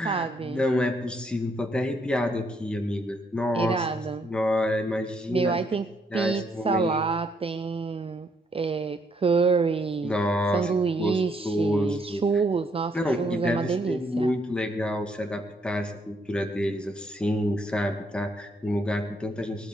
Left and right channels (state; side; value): normal; both; correlation 0.72